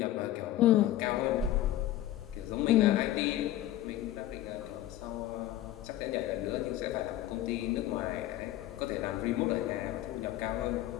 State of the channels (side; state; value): right; quieter; 13.8 dB